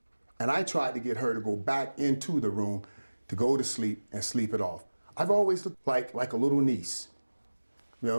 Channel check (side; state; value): both; inverted; correlation -1.00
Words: And I tried to get her to go back into the room to go to sleep and sleep it off. I've always looked like a little niece. You